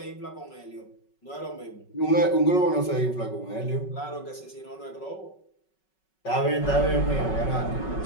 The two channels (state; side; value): late; right; 5.4 ms